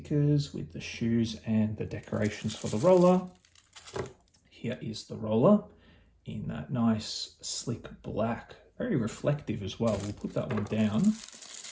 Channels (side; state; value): both; identical; correlation 1.00